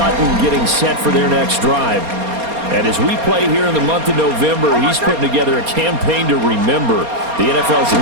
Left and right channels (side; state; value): left; late; 4.3 ms